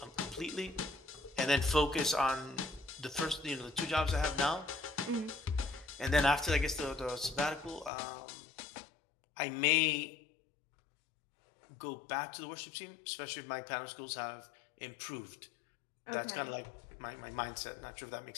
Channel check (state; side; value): drops out; right; at 7.9 s